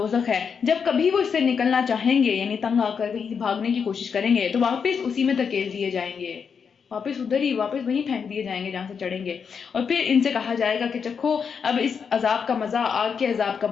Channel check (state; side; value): quieter; right; 6.4 dB